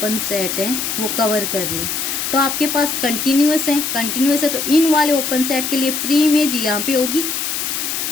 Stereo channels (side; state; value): left; noise; hiss, 2 dB below the sound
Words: सेट हैं वो कवर कर रहे हैं, तो आपके पास कंटिन्यूअस है, कंटिन्यूअस है तो इन वाले ओपन सेट के लिए प्री इमेज यहाँ पे होगी।